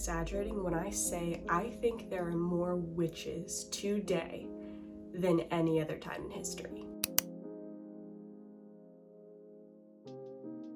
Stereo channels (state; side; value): identical; both; correlation 1.00